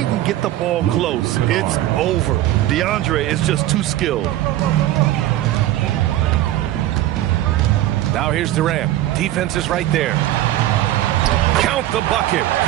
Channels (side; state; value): left; quieter; 14.3 dB